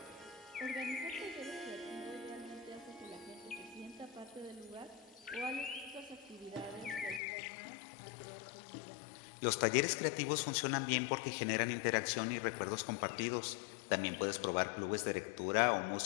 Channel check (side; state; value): right; drops out; at 7.2 s